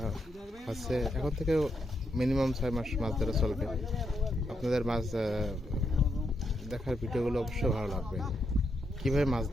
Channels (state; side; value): normal; both; correlation 0.80